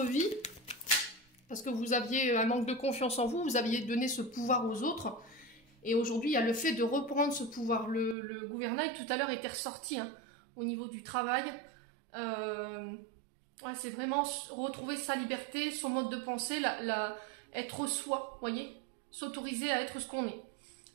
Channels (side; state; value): left; drops out; at 8.2 s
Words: vie, parce que vous aviez un manque de confiance en vous, vous aviez donné ce pouvoir aux autres, et aujourd'hui il y a le fait de reprendre ce pouvoir. Le gouvernail tout à l'heure était ressorti hein, au niveau du travail. Ouais, c'est vraiment retrouver sa liberté, son mode de pensée, être soi, voyez, s'autoriser à être ce qu'on est.